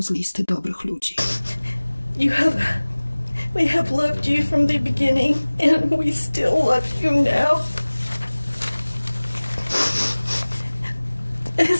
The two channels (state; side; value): inverted; both; correlation -1.00